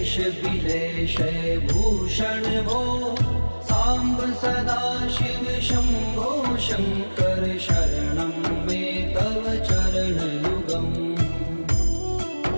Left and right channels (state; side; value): inverted; both; correlation -1.00